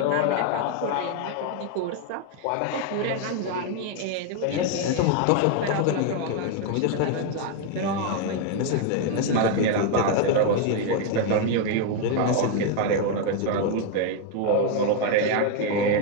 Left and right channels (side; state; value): both; different; correlation 0.01